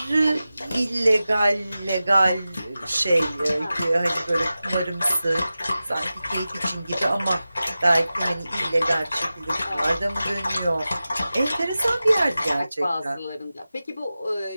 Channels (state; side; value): inverted; both; correlation -0.95